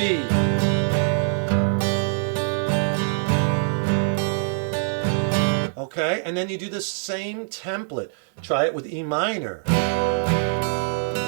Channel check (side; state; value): left; silent; digital silence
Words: Okay, and then you do the same template. Try it with E minor.